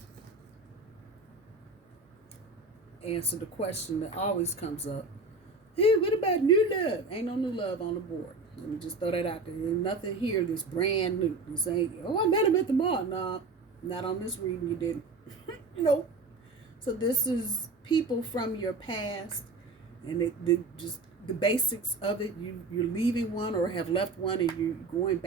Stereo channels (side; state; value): left; quieter; 3.5 dB